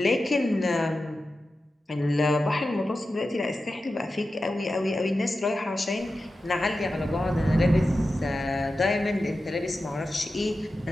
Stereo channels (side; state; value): both; normal; correlation 0.92